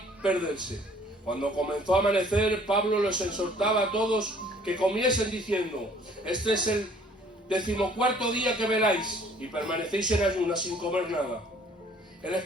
perderse. Cuando comenzó a amanecer, Pablo los exhortaba a todos que comiesen diciendo, este es el 14º día que veláis y permanecéis en ayunas sin comer nada. El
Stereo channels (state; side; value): normal; both; correlation 0.56